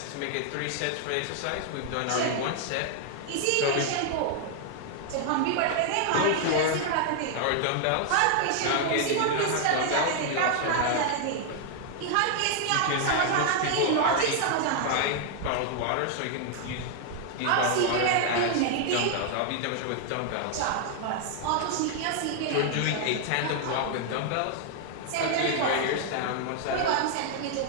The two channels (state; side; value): different; both; correlation 0.00